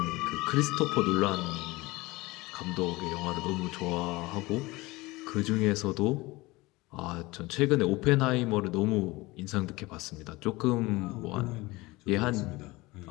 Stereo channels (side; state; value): right; quieter; 21.5 dB